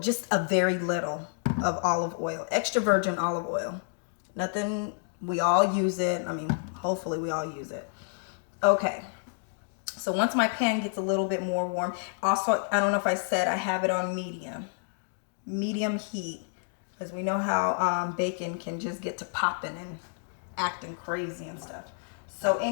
a very little of olive oil, extra virgin olive oil. Nothing, we all use it. I mean, hopefully we all use it. Okay. So once my pan gets a little bit more warm, also, I don't know if I said I have it on medium heat, because we know how bacon can just get to popping and acting crazy and stuff. So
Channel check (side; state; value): right; silent; digital silence